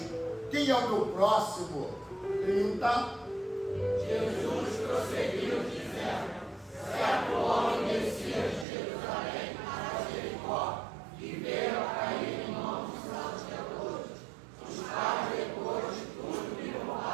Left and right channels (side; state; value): left; drops out; at 8.7 s